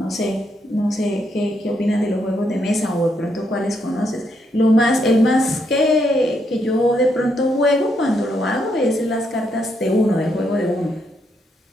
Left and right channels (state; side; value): normal; both; correlation 0.77